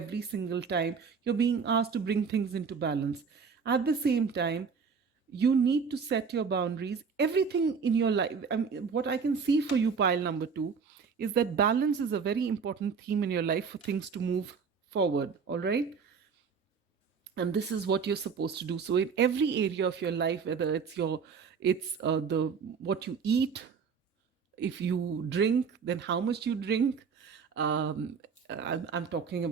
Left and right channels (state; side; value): quieter; left; 5.8 dB